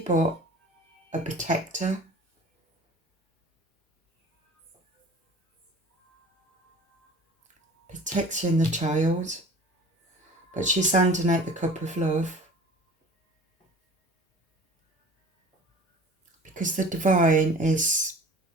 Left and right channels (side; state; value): both; normal; correlation 0.42